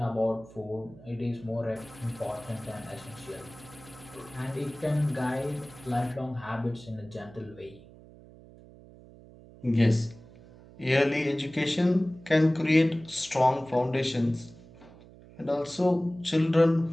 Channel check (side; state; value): right; noise; hum, 21 dB below the sound